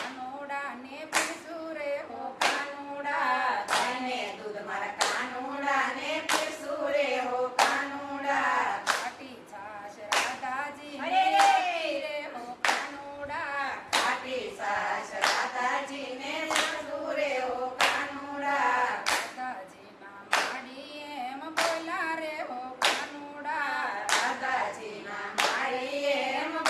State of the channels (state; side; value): identical; both; correlation 1.00